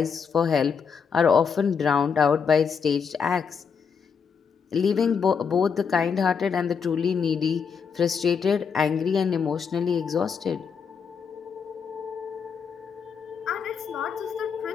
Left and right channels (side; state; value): right; quieter; 6.3 dB